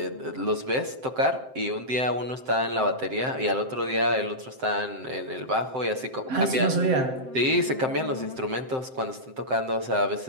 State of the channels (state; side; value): late; left; 7.7 ms